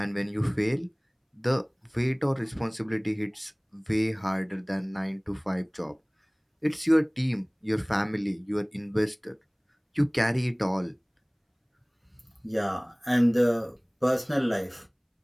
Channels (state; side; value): identical; both; correlation 1.00